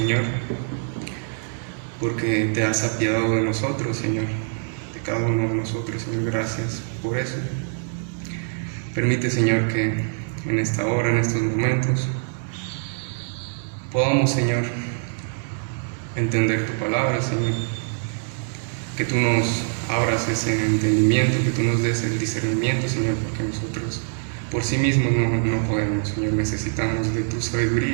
porque te has apiadado de nosotros, Señor, de cada uno de nosotros, Señor. Gracias por eso. Permite, Señor, que en esta hora, en estos momentos, podamos, Señor, entender tu palabra, Señor, que tú nos abras ese entendimiento, que tú nos des el discernimiento, Señor, porque nosotros por sí mismos no podemos, Señor. Necesitamos de tu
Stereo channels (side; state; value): left; silent; 63 dB below the other